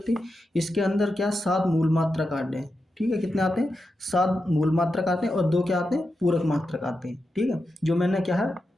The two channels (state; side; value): normal; both; correlation 0.89